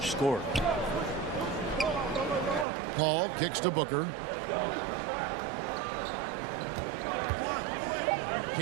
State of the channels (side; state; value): left; drops out; at 2.7 s